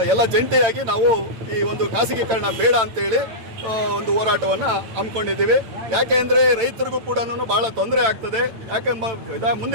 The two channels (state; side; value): late; left; 9.0 ms